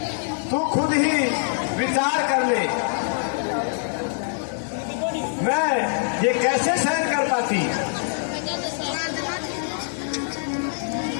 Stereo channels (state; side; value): silent; right; 58 dB below the other